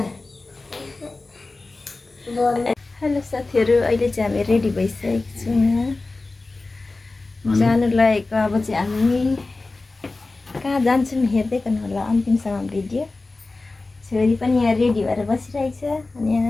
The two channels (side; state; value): right; quieter; 3.4 dB